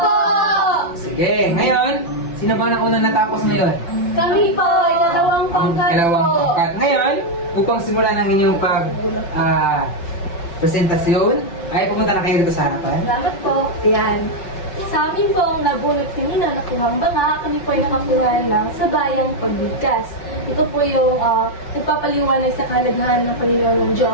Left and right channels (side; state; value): right; late; 5.8 ms